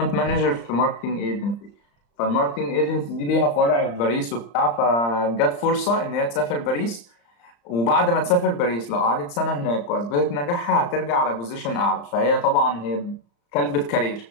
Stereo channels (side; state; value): right; late; 35 ms